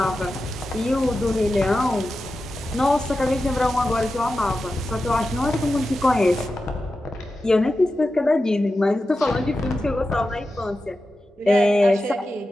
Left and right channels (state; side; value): normal; both; correlation 0.92